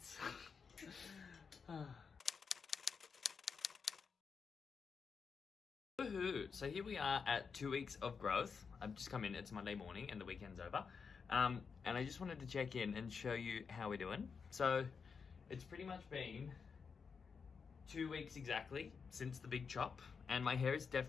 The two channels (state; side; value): quieter; right; 5.7 dB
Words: Woohoo! So here we are at 2 weeks of growth. I've just come in, it's Monday morning and the weekend's over. And I just wanted to check in and show you how we're doing. So it's pretty much been 2 weeks exactly since the big chop, and my hair is